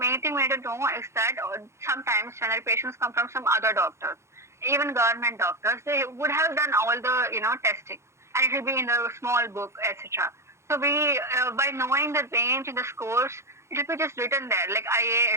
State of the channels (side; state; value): left; late; 0.13 ms